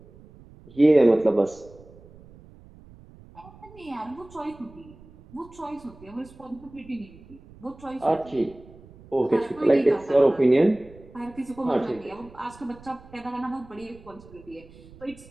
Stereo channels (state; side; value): noise; right; rumble, 22 dB below the sound